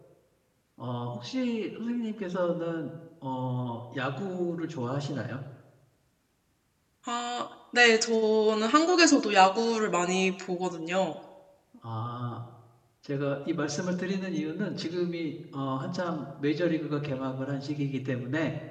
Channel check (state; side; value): identical; both; correlation 1.00